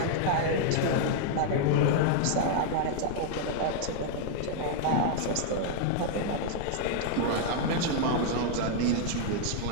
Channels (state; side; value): different; both; correlation 0.00